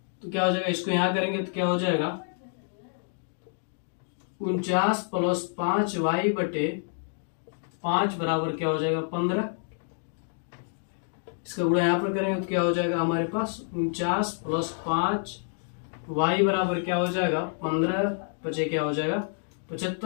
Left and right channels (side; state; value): right; silent; digital silence